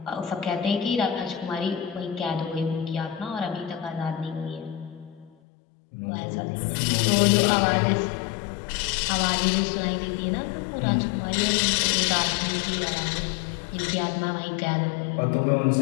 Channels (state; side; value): drops out; right; at 5.3 s